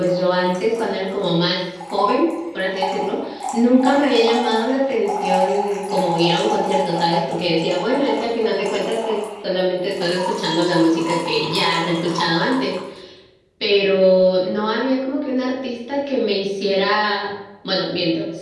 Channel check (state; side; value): identical; both; correlation 1.00